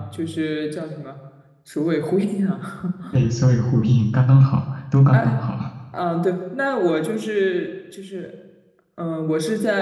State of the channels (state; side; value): identical; both; correlation 1.00